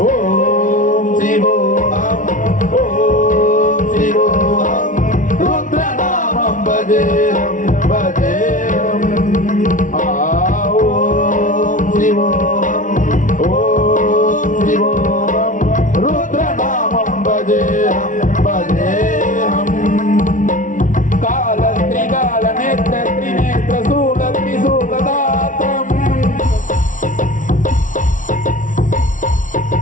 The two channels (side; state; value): right; late; 0.38 ms